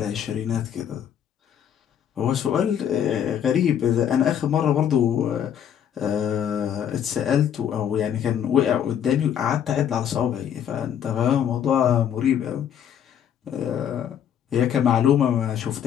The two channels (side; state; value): right; quieter; 9.2 dB